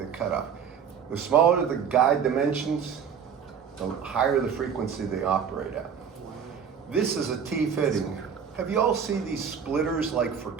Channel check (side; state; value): left; quieter; 7.2 dB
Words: cutoff. The smaller the guide dimensions, the higher the frequency they operate at. This is a T-fitting. Have you all seen these splitters like for